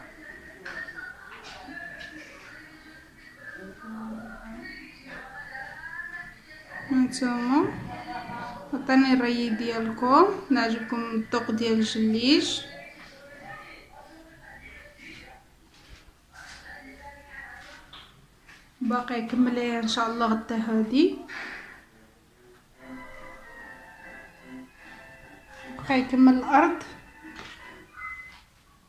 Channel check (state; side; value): identical; both; correlation 1.00